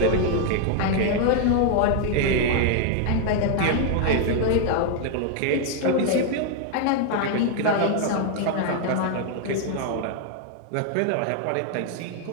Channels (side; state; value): both; different; correlation 0.00